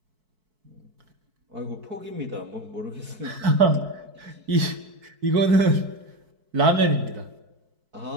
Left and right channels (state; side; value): late; left; 4.6 ms